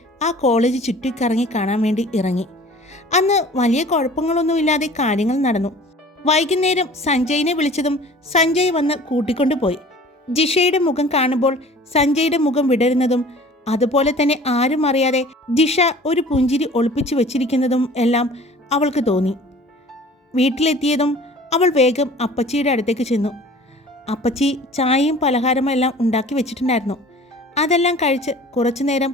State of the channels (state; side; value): normal; both; correlation 0.46